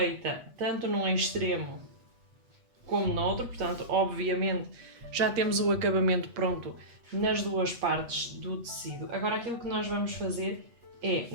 tanto num extremo como no outro, portanto obviamente já temos o acabamento pronto nas duas partes do tecido. Agora aquilo que nós vamos fazer é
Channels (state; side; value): late; left; 8.2 ms